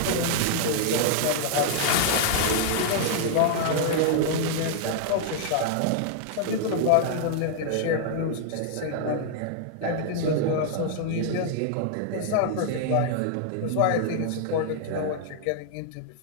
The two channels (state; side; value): different; both; correlation -0.01